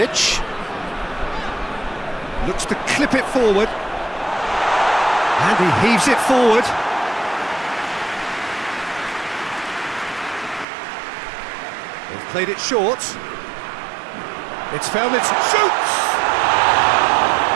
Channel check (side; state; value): left; drops out; at 10.7 s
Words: looks to clip it forward, and he heaves it forward. They've played it short. It's found its shoots.